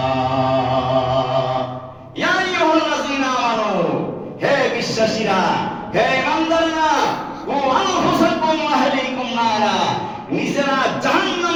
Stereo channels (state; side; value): identical; both; correlation 1.00